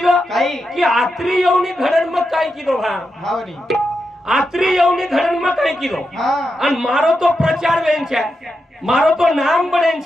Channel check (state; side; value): normal; both; correlation 0.87